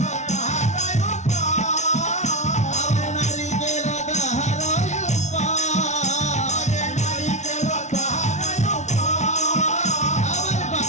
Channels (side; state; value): right; late; 0.33 ms